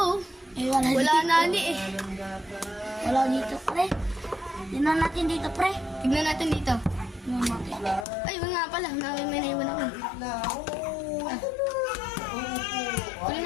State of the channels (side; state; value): right; drops out; at 8.1 s